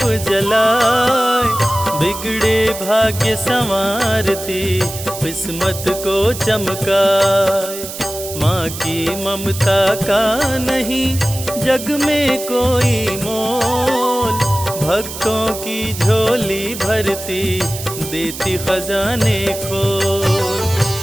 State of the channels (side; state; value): right; noise; hiss, 10 dB below the sound